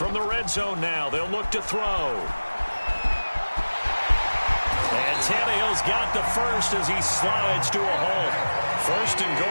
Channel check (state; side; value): inverted; both; correlation -1.00